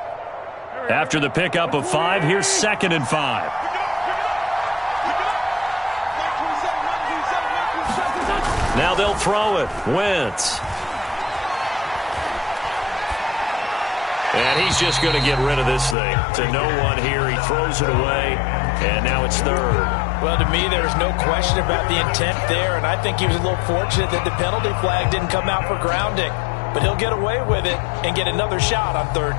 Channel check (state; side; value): drops out; right; at 16.0 s